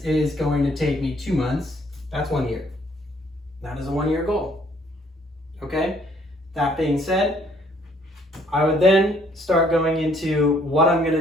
going to take me 2 months. That's 1 year. That is a 1 year goal. Okay? That being said, I would then start going into what I'm going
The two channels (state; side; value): normal; both; correlation 0.64